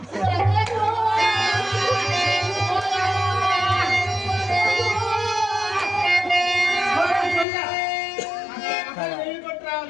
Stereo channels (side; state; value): right; drops out; at 7.5 s